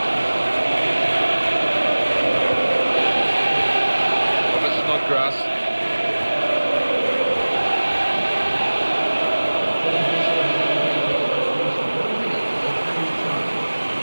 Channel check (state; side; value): inverted; both; correlation -1.00